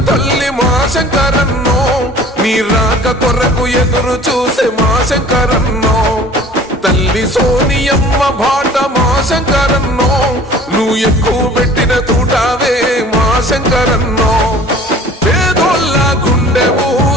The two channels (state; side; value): normal; both; correlation 0.47